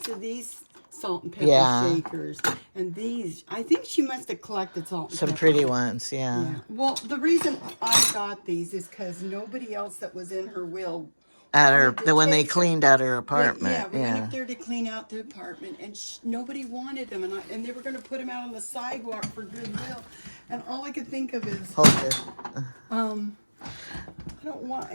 of these salt and pepper Yeah. shakers. And these, I think she must have collected salt and some pepper. pretty ones. Yeah. Yeah. Well, the reason I got these is because nobody else that was in her will. At her, wanted to when they take them. cleaned out her apartment. Yeah, we Yeah. went up there to clean out the apartment, and nobody wanted them, and they were going to put them out on the sidewalk for goodwill. And all I could think of is, Hold this. I don't want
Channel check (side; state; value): both; inverted; correlation -1.00